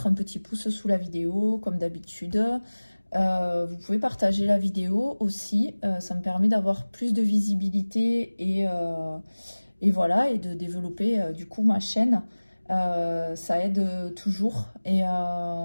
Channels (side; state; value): both; inverted; correlation -1.00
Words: un petit pouce sous la vidéo comme d'habitude. Vous pouvez partager la vidéo aussi, ça me permet d'avoir plus de visibilité et voilà, et de développer du coup ma chaîne. Ça aide toujours et